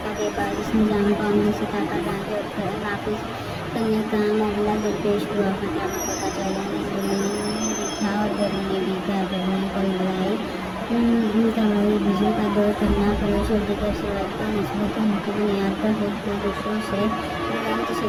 के बाद इस निज़ाम को अमली सतह पर लाने और नाफिज़ करने का मामला दरपेश हुआ। फ़िज़ा मक्का का चैलेंज था और गर्मी भी था। गर्मी को लड़ाई कवाई वज़ू का दौर करना, फरोश और दीगर शराइत पर निस्बत की बुनियाद पर खुद को दूसरों से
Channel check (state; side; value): identical; both; correlation 1.00